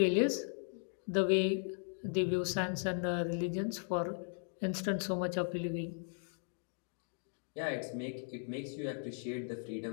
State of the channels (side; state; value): right; silent; 53 dB below the other